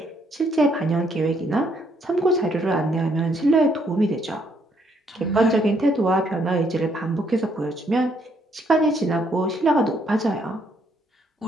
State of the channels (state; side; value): normal; both; correlation 0.70